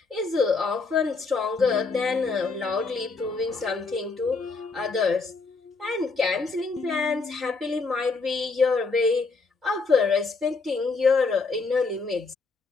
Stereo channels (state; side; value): quieter; right; 4.1 dB